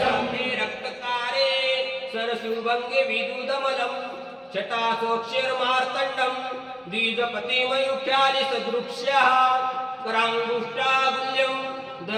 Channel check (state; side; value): identical; both; correlation 1.00